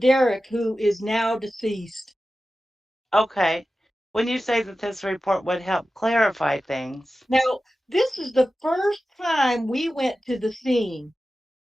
who is now deceased. okay. When you say that this report would help clarify things, Now, this is the first time we went to the scene.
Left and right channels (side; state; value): both; normal; correlation 0.94